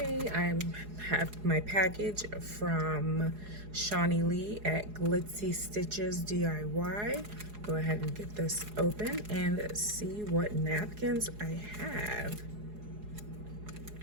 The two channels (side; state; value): left; late; 4.8 ms